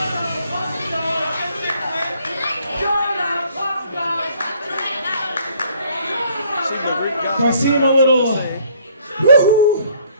If I seem a little woohoo,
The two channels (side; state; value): both; inverted; correlation -0.62